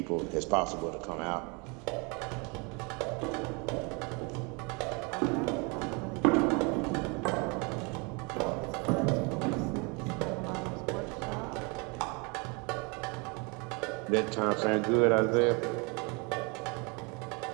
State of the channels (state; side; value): quieter; left; 30.7 dB